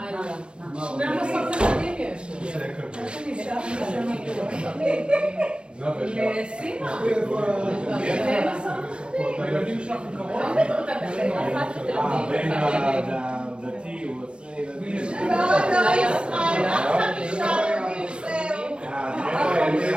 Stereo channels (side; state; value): left; late; 0.057 ms